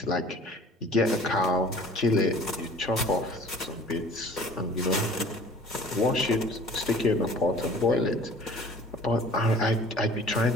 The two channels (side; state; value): both; normal; correlation 0.48